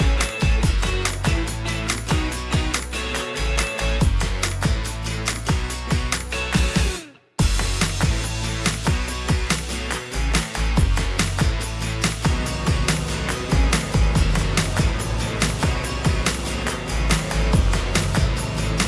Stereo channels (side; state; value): both; identical; correlation 1.00